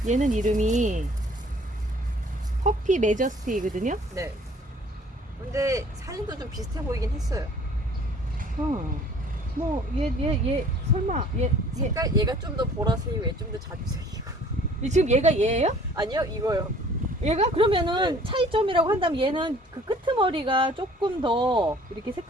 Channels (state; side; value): normal; both; correlation 0.53